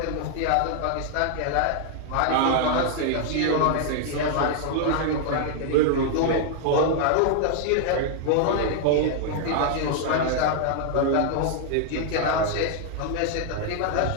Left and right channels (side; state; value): both; different; correlation 0.00